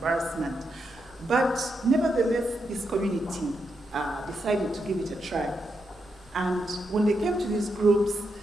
But nevertheless, this community decided to give it a try. And when they came to these groups,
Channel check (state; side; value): normal; both; correlation 0.83